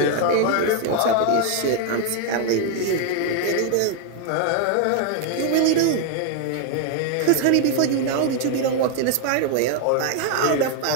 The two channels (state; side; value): different; both; correlation 0.00